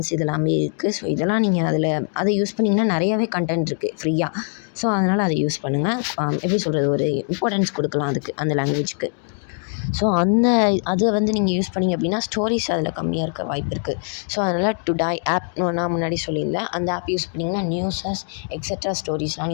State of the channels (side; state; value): right; silent; 57 dB below the other